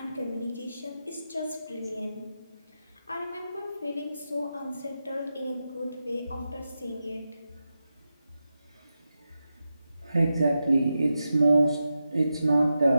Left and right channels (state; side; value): inverted; both; correlation -0.89